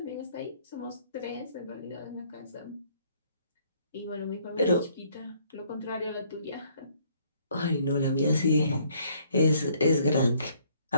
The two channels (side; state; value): both; inverted; correlation -0.64